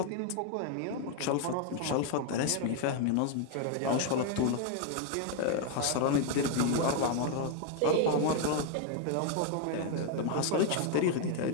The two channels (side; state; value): both; different; correlation 0.00